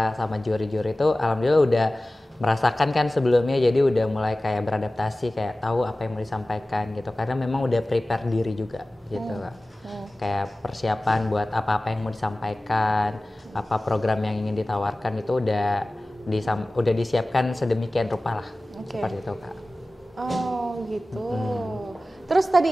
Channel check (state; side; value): normal; both; correlation 0.97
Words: sama juri-juri itu alhamdulillah udah merasakan kan sebelumnya, jadi udah mulai kayak beradaptasi, kayak tahu apa yang mau disampaikan gitu, karena memang udah prepare diri juga gitu Kak. Kayak persiapan buat apa-apa yang mau disampaikan, apa program yang ingin ditawarkan itu udah disiapkan sedemikian rupa lah. Seperti itu Kak. Oh gitu. Terus